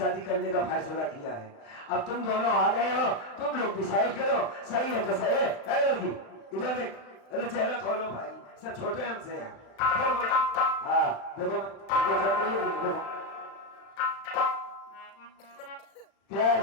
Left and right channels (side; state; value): right; late; 35 ms